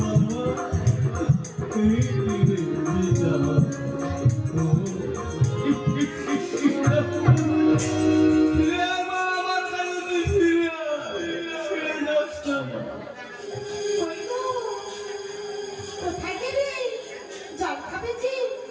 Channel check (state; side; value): identical; both; correlation 1.00